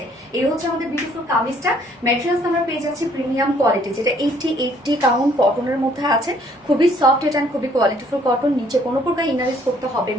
এই হচ্ছে আমাদের বিউটিফুল কামিজটা। ম্যাটেরিয়ালস আমরা পেয়ে যাচ্ছি প্রিমিয়াম কোয়ালিটি, যেটা 80 কাউন্ট কটনের মধ্যে আছে। খুবই সফট এটা, খুবই কোয়ালিটিফুল কটন। নিচে কোনো প্রকার ইনারেস করতে হবে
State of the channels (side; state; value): both; normal; correlation 0.63